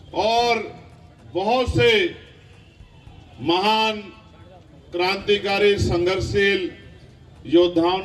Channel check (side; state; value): both; identical; correlation 1.00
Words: और बहुत से महान क्रांतिकारी, संघर्षशील योद्धाओं